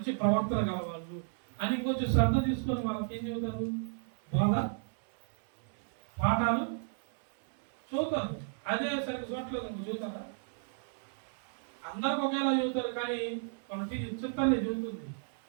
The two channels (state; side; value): silent; left; 56 dB below the other